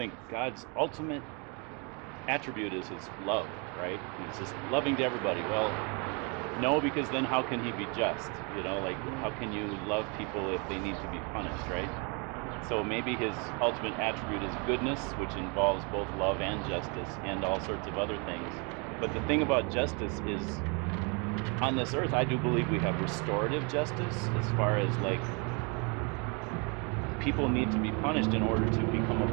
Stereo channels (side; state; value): left; quieter; 33.0 dB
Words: God's ultimate attribute is his love, right? He's just loving to everybody. Well, no, because then how can he be just? You know, like, how can you love people if they need to be punished, right? So maybe his ultimate attribute is goodness, which involves both love and justice and all sorts of other things. But the thing about justice is, on this earth, I do believe we have restorative justice, as far as, like, people need to be punished in order to become a